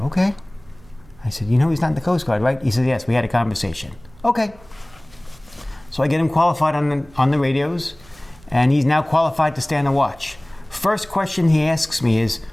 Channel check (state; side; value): noise; right; hum, 25 dB below the sound